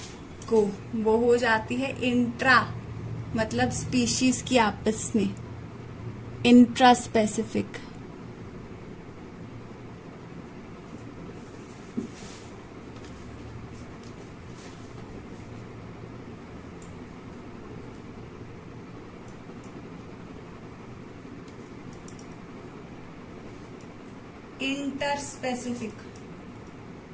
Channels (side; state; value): both; identical; correlation 1.00